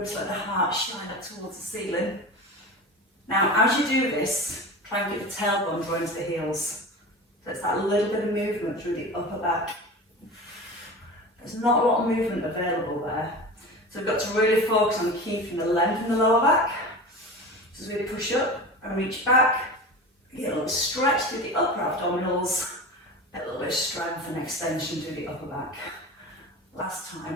let the heart shine up towards the ceiling. Now, as you do this, try and get the tailbone drawn to the heels. So it's that little bit of movement through the upper back. There's not a lot of movement available there. So we've got to really focus on keeping the length in the lower back. So as we push up and reach back, get a little stretch through the upper abdominals, a little bit of strength and extension through the upper back. Last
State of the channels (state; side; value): normal; both; correlation 0.31